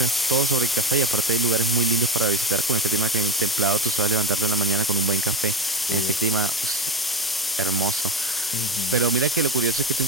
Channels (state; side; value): normal; both; correlation 0.19